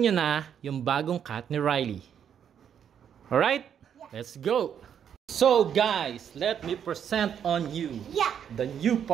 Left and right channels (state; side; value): quieter; left; 8.6 dB